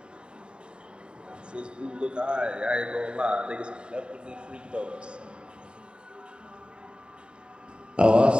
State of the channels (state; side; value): late; left; 0.051 ms